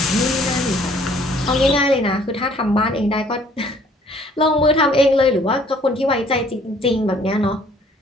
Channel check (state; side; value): normal; both; correlation 0.58